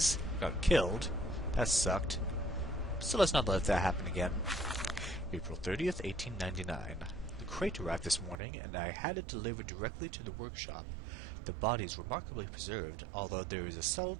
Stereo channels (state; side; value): drops out; left; at 8.3 s